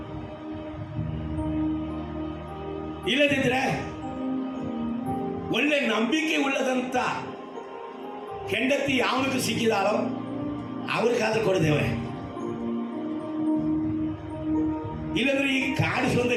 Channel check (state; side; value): identical; both; correlation 1.00